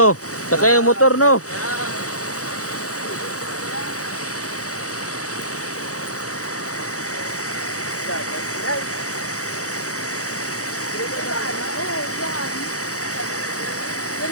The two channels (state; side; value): late; right; 0.65 ms